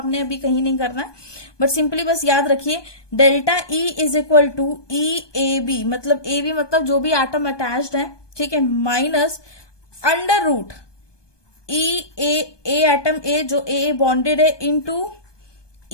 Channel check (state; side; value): late; right; 1.2 ms